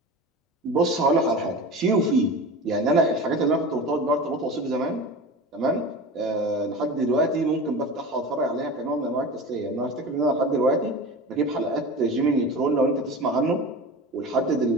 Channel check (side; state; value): both; normal; correlation 0.32